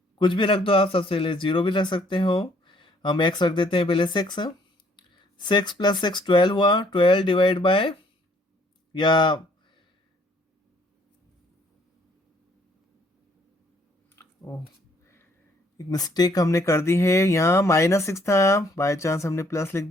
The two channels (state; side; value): normal; both; correlation 0.63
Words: कुछ भी रख दो आप, सबसे पहले 0 भी रख सकते हो। हम x रख देते हैं पहले 6। 6 + 6 12 हुआ, 12 डिवाइड बाय, या एक मिस्टेक हमने कर दी है, यहाँ -6 था, बाय चांस हमने प्लस लिख